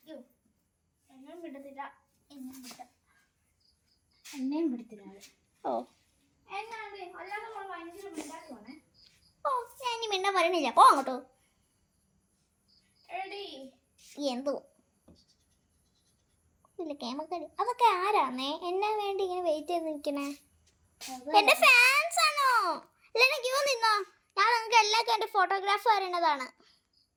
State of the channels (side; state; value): both; identical; correlation 1.00